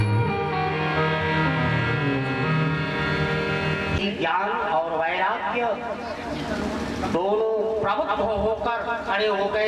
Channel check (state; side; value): identical; both; correlation 1.00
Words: कि ज्ञान और वैराग्य दोनों प्रबुद्ध होकर खड़े हो